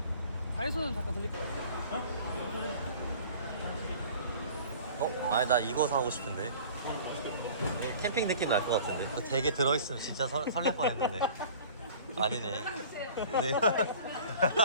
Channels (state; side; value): inverted; both; correlation -0.45